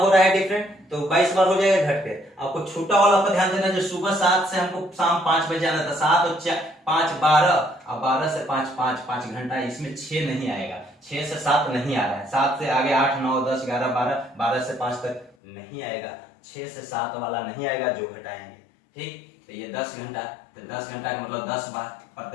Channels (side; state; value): right; drops out; at 15.3 s